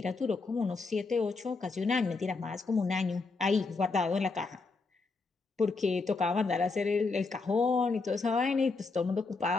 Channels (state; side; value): quieter; right; 4.0 dB